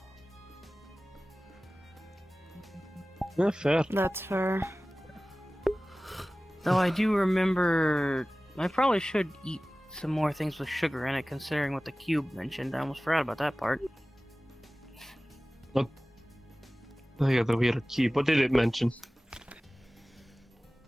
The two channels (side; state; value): both; normal; correlation 0.97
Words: Yeah, fair. That's fair. Though I do remember... I probably should eat some more things with sugar in it, considering what the cube mentioned. I almost forgot about that part. Oh yeah, the weird key. What did it mention?